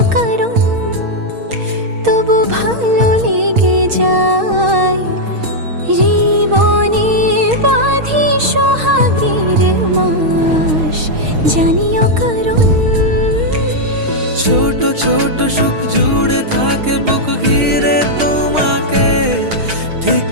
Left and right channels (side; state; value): left; late; 6.4 ms